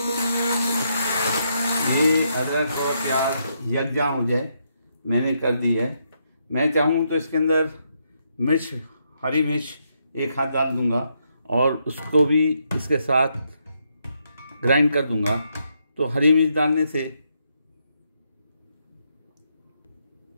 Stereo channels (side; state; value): both; inverted; correlation -0.78